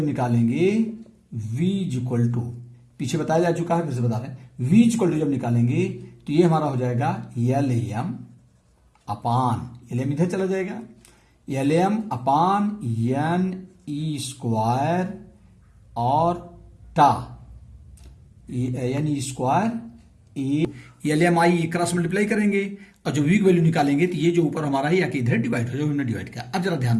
निकालेंगे, V इक्वल टू पीछे बताया जा चुका है, फिर से बता रहे हैं, V इक्वल टू जब निकालेंगे तो ये हमारा हो जाएगा LM अपान, LM इधर चला जाएगा, LM अपान NE स्क्वायर और टा NE स्क्वायर ए, LMI क्रॉस मल्टीप्लाई करेंगे और जो V की वैल्यू निकालेंगे तो ये जो ऊपर हमारा है या कि इधर डिवाइड हो, जो हमने डिवाइड किया। अब जरा ध्यान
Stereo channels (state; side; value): identical; both; correlation 1.00